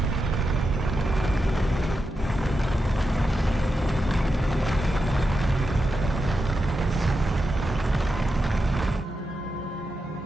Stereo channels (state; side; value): normal; both; correlation 0.88